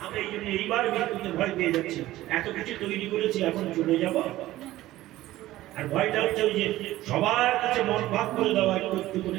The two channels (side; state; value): left; quieter; 15.8 dB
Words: আমরা এই জন্য এইবার মৃত্যুতে ভয় পেয়ে যাচ্ছি। এত কিছু তৈরি করেছি, এখন চলে যাব। আর ভয়টা হচ্ছে ওই যে সবার কাছে মন ভাগ করে দেওয়া, একটু একটু